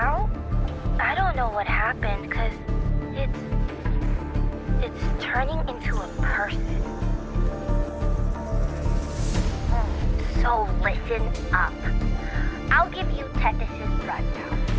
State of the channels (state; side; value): identical; both; correlation 1.00